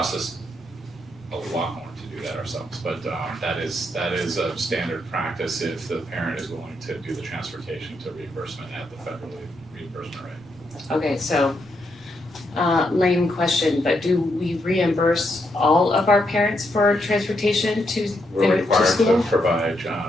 us a lot more to do that ourselves, but that is a standard practice if the parent is willing to do the transportation to reimbursement at the federal reimbursement rate. Okay, so, lame question, but do we reimburse all of our parents for transportation to We're to required school? to provide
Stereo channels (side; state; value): left; noise; rumble, 30 dB below the sound